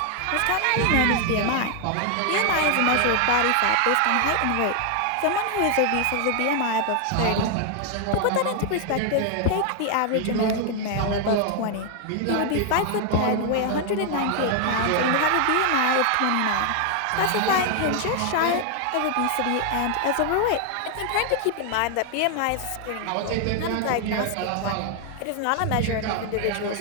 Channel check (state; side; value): different; both; correlation 0.00